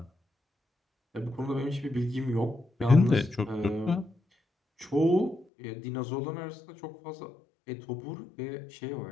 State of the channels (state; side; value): drops out; right; at 5.5 s